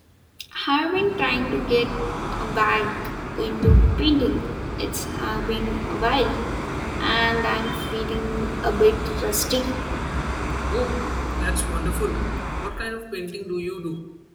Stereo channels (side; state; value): both; identical; correlation 1.00